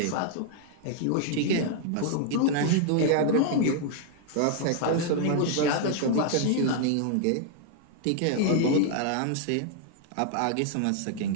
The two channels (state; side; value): different; both; correlation -0.01